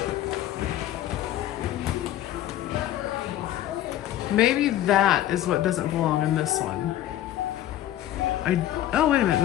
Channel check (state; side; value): quieter; right; 12.8 dB